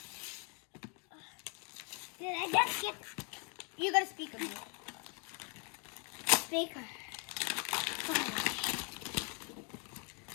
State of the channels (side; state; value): right; quieter; 35.1 dB